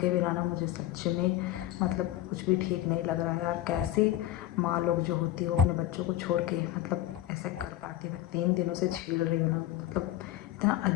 बिना ना मुझे सच में मतलब कुछ भी ठीक नहीं लग रहा है यार। कैसे माँ लोग जो होती है वो अपने बच्चों को छोड़ के मतलब ऐसे कर पाती है। मैं 3 दिनों से झेल रही हूँ ना, मतलब इतना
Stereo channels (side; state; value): right; quieter; 13.5 dB